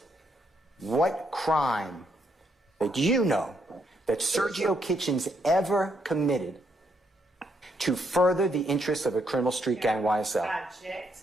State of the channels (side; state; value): both; normal; correlation 0.75